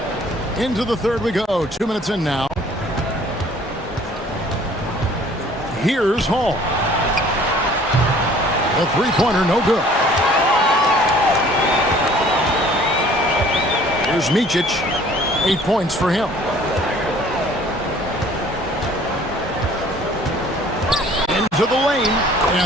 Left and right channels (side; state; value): both; normal; correlation 0.53